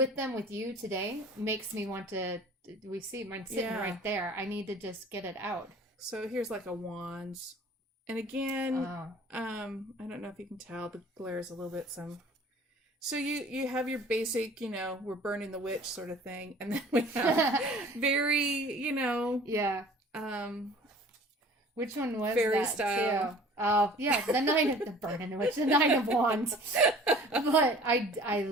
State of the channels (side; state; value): both; normal; correlation 0.48